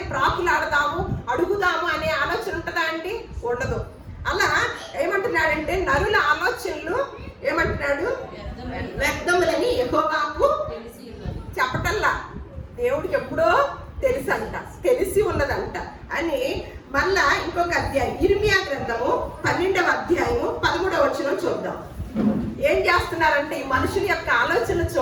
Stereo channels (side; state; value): both; identical; correlation 1.00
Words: ప్రాకులాడదాము, అడుగుదాము అనే ఆలోచన ఉంటుందా అండి? ఉండదు. అలా ఏమంటున్నాడంటే, నరుల ఆలోచనలు ఏమంటున్నాడు? వ్యర్థములని యెహోవాకు చెప్పటల్లా, దేవుడికి ఎప్పుడో తెలిసి ఉన్నదంట అని. మళ్ళా ఇంకొక అధ్యాయం, ఇర్మియా గ్రంథము 12వ అధ్యాయము 13వ వచనం చూద్దాం. ఏం చేస్తున్నారంటే, ఈ మనుషుల యొక్క ఆలోచన